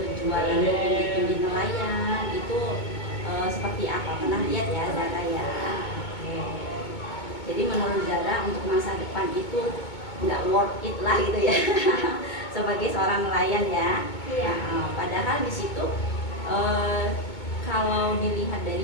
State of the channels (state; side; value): late; right; 2.2 ms